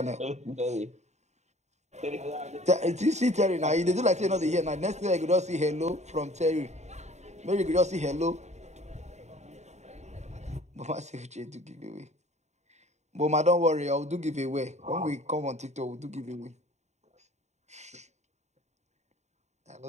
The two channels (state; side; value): late; left; 0.33 ms